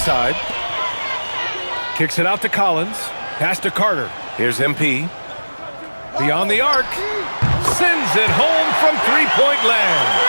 Kicks it out to Collins. Pass to Carter. Here's MP. Beyond the arc. Sends it home from three-point land.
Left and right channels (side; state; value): both; inverted; correlation -1.00